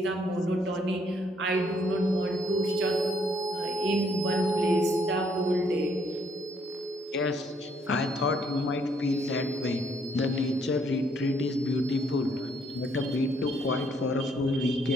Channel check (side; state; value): both; normal; correlation 0.68